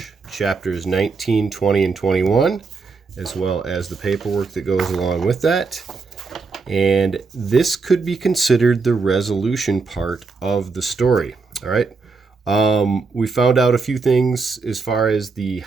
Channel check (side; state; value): left; quieter; 4.4 dB